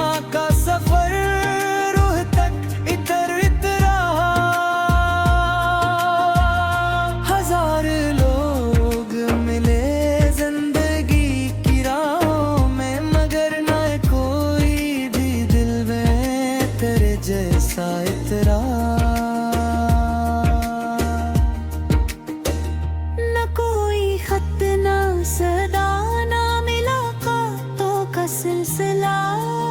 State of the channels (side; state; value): both; identical; correlation 1.00